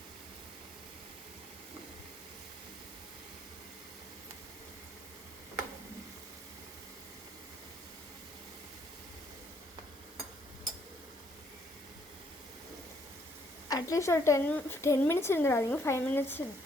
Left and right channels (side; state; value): both; normal; correlation 0.69